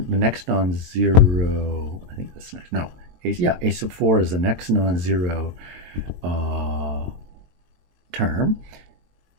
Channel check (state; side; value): late; left; 22 ms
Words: next non-zero, I think that's next, no, a sub 4 is the next non-zero term.